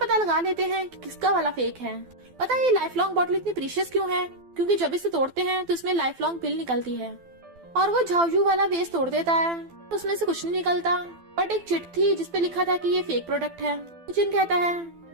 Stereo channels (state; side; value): late; left; 12 ms